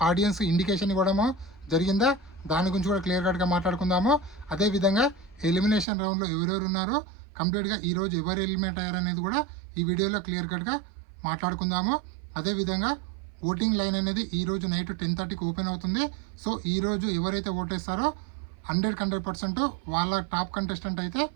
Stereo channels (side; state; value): left; drops out; at 5.9 s